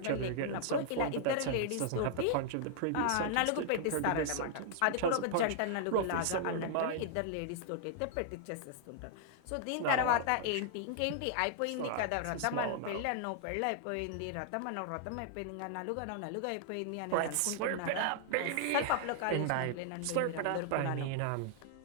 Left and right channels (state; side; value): different; both; correlation -0.01